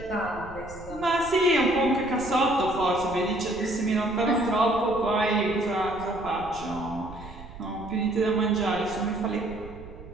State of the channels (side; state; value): right; noise; rumble, 16 dB below the sound